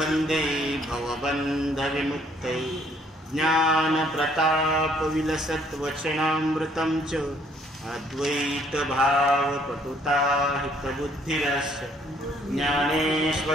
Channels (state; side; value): normal; both; correlation 0.64